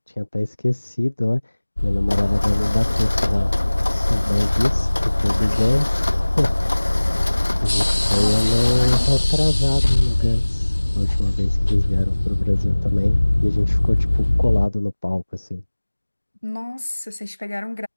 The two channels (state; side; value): inverted; both; correlation -1.00